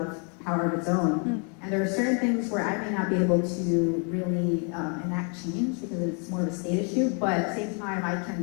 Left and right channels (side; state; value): right; quieter; 38.2 dB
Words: power of its own. And there are certain things where I may not be able to really enact change because it's more of a state issue, but at the same time I